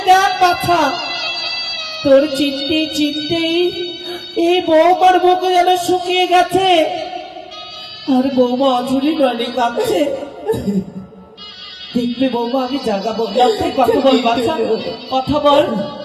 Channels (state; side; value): identical; both; correlation 1.00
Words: দেখ বাছা, তোর চিনতে চিনতেই এই বৌমার বুকে যেন শুকিয়ে গেছে, আর বৌমা অঝুরি নয় কাঁদছে। দেখবে বৌমা, আমি জাগাবো। লক্ষাই, কথা বল বাছা, কথা বল।